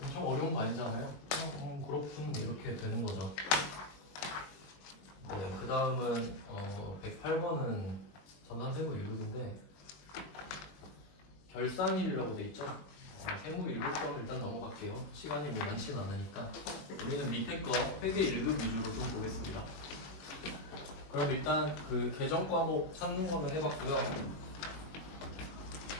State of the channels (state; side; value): late; right; 21 ms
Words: 엄청 어려운 거 아니잖아요. 그냥 그렇군 이렇게 되는 거죠. 네, 그 다음은 108번은 전산세무 1급인데 결산일이라고 돼 있죠. 세무 1급점을 일단 넘어갈게요. 시간이 뭐 많지는 않으니까. 우리는 밑에 거 회계 1급 위주로 좀 보겠습니다. 그럼 일단 그 계정 과목 찾는 거는 해봤고요.